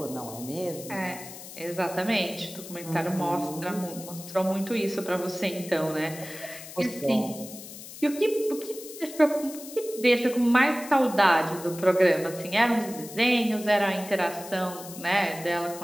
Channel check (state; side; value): noise; left; hiss, 14 dB below the sound